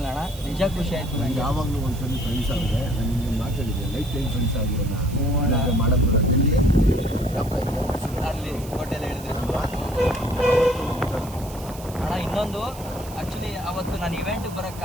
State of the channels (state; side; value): noise; right; hiss, 17 dB below the sound